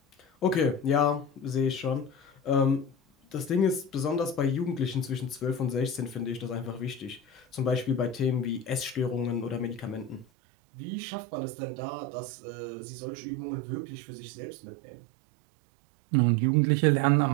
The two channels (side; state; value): left; drops out; at 10.2 s